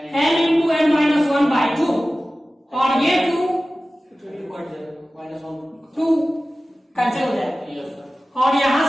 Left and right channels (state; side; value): normal; both; correlation 0.96